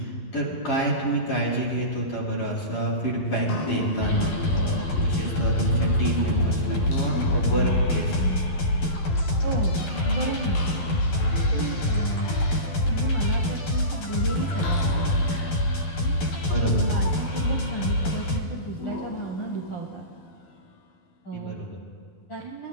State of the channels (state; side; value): late; right; 11 ms